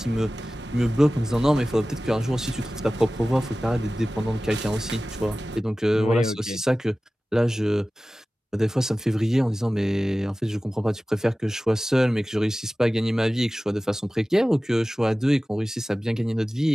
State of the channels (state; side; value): normal; both; correlation 0.96